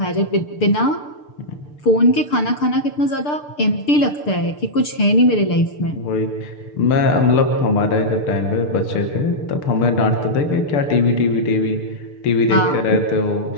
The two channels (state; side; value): late; right; 6.8 ms